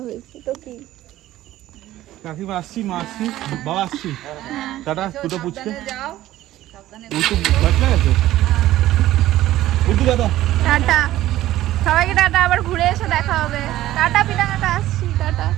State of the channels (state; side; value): quieter; left; 14.7 dB